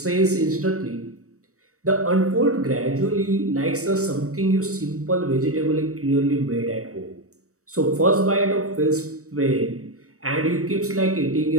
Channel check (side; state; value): left; late; 0.65 ms